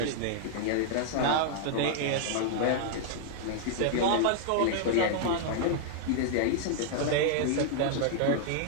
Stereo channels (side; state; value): both; different; correlation -0.01